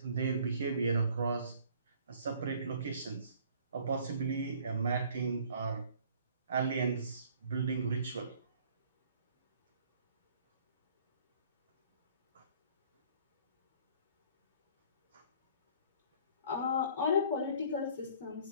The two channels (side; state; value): both; inverted; correlation -0.55